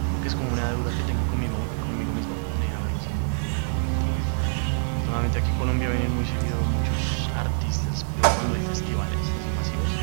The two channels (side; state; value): left; silent; digital silence